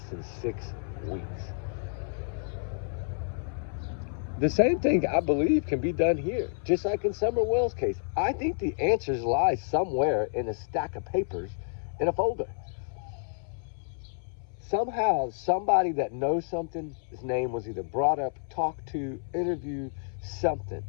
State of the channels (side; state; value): right; silent; 58 dB below the other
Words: than 6 weeks. The same thing, I believe, can be done here, just like in Summer Wells' case. I think the answers lie somewhere in a stack of papers in a folder. Somehow, somebody that knows something, his name was either brought up, talked to, interviewed, something